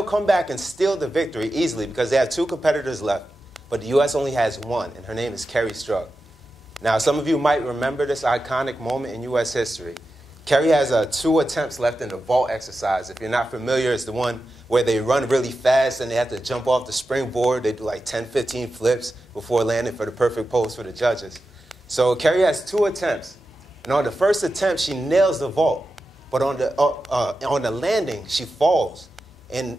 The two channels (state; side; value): normal; both; correlation 0.91